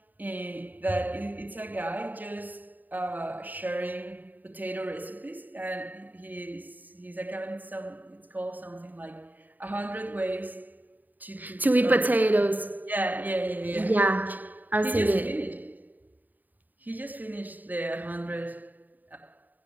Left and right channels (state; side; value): late; left; 0.085 ms